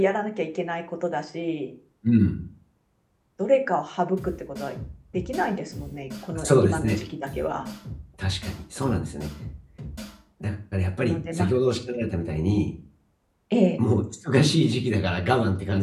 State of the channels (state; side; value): identical; both; correlation 1.00